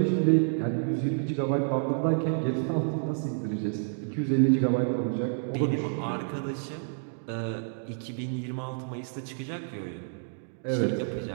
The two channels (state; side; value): silent; left; digital silence